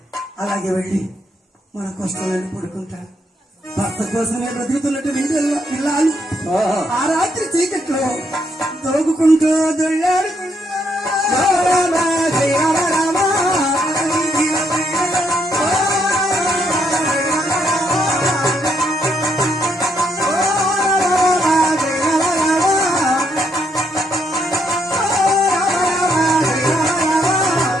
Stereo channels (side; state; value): both; normal; correlation 0.74